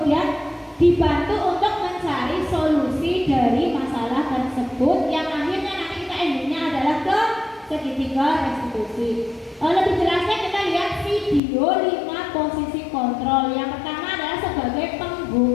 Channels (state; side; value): drops out; right; at 11.4 s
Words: dibantu untuk mencari solusi dari masalah tersebut yang akhirnya nanti kita endingnya adalah ke segitiga restitusi. Lebih jelasnya kita lihat video 5 posisi kontrol. Yang pertama adalah sebagai